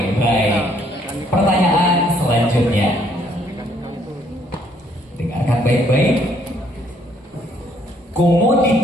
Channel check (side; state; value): both; normal; correlation 0.66